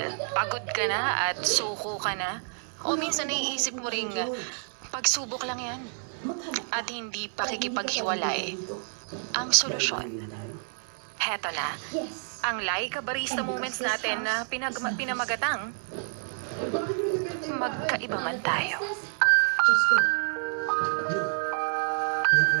pagod ka na at suko ka na? O minsan naiisip mo ring pagsubok lang yan at hindi pakikipaghiwalay ang solusyon? Heto na, ang Laika Barista Moments natin na pinamagatang magkaiba man tayo.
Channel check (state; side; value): silent; left; 59 dB below the other